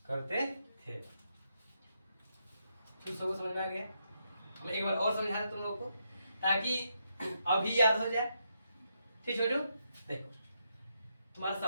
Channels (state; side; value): inverted; both; correlation -0.81